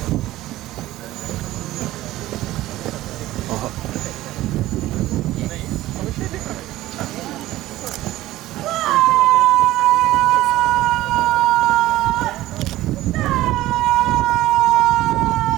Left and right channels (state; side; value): quieter; left; 15.9 dB